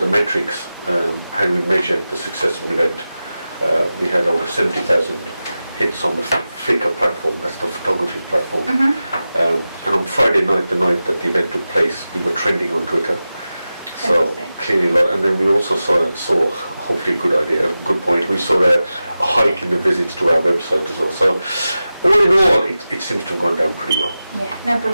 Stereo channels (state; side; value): inverted; both; correlation -0.94